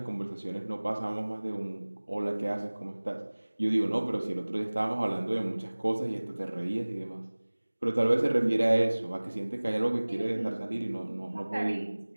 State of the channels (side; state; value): both; inverted; correlation -1.00